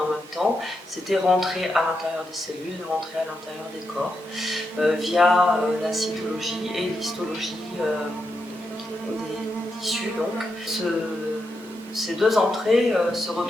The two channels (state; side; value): normal; both; correlation 0.85